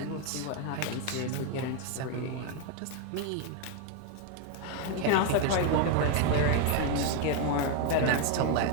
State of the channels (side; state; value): both; different; correlation 0.01